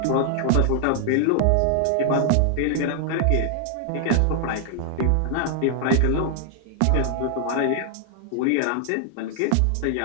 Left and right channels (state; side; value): different; both; correlation 0.00